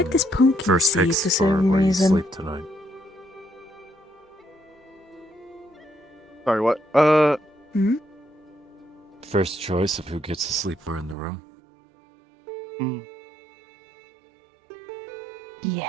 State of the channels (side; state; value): left; drops out; at 11.2 s